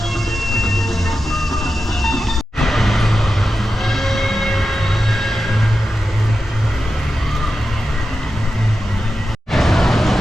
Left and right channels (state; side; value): normal; both; correlation 0.91